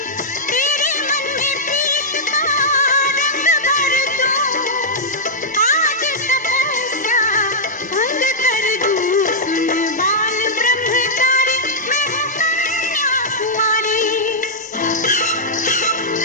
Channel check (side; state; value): both; normal; correlation -0.08